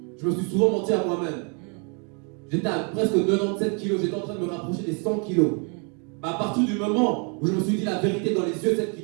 Je me suis souvent menti à moi-même. J'étais à presque 97 kilos, j'étais en train de me rapprocher des 100 kilos. À partir du moment où je me suis dit la vérité dans les yeux, celle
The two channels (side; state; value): left; quieter; 37.3 dB